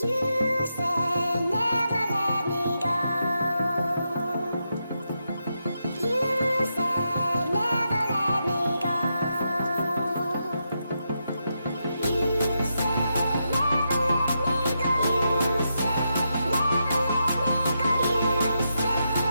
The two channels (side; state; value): both; inverted; correlation -0.84